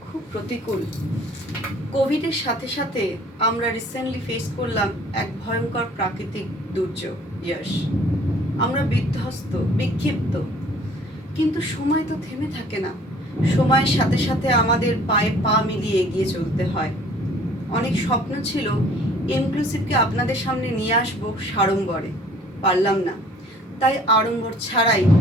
খুব প্রতিকূল। কোভিডের সাথে সাথে আমরা রিসেন্টলি ফেস করলাম এক ভয়ঙ্কর প্রাকৃতিক দুর্যোগ ইয়াশ। আমরা বিধ্বস্ত, বিক্ষিপ্ত, কিন্তু সময় তো থেমে থাকে না। সময়ের সাথে সাথে আমাদের পায়ে পা মিলিয়ে এগিয়ে চলতে হয়। অনেক স্বপ্ন ছিল ইনক্লুসিভকে আপনাদের সামনে নিয়ে আসবো সাড়ম্বরে, পারলাম না। তাই আড়ম্বর ছাড়াই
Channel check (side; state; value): both; normal; correlation 0.54